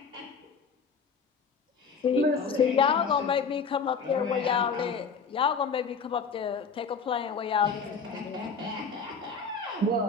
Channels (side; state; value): right; quieter; 5.3 dB